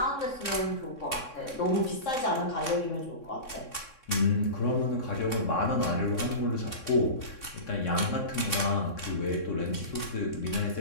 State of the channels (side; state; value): right; late; 3.6 ms